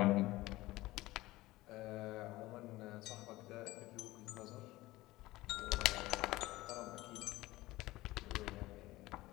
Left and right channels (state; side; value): quieter; right; 18.4 dB